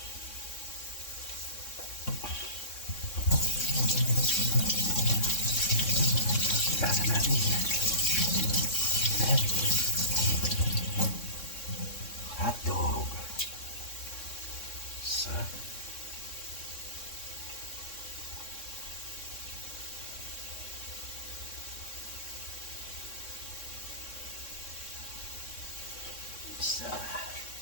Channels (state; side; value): late; right; 3.6 ms